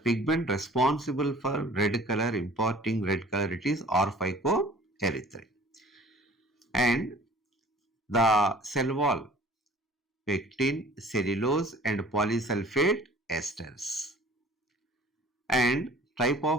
responsible for red color, imparting red color, it is or phycoerythrin. And the cell wall, pectin, cellulose and polysulfate esters. And type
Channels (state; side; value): normal; both; correlation 0.49